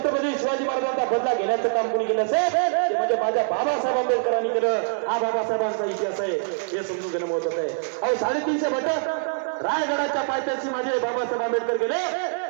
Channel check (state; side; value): silent; left; 62 dB below the other